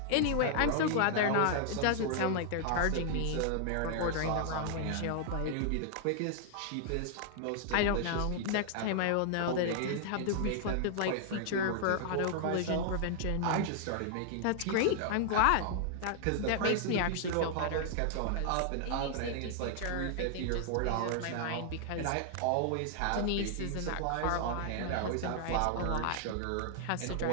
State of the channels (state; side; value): different; both; correlation 0.00